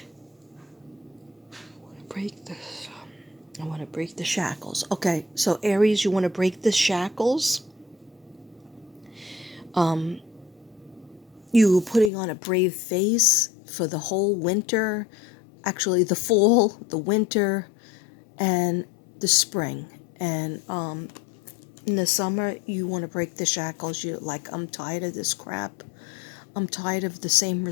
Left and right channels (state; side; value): drops out; right; at 12.1 s